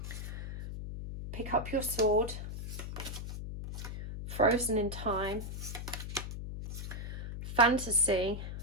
Pick up your sword. Frozen in time. Fantasy.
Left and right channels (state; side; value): noise; left; hum, 7 dB below the sound